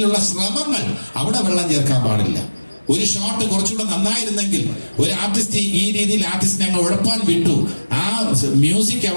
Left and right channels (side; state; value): both; inverted; correlation -1.00